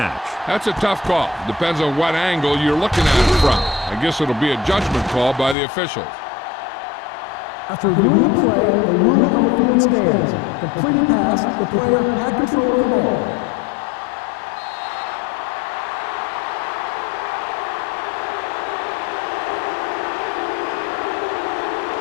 That's a tough call. Depends on what angle you're looking at it from. I guess it'll be a judgment call by the officials. After reviewing the play, the ruling on the field stands. Completed pass, the player had control of the ball.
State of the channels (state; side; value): drops out; right; at 5.6 s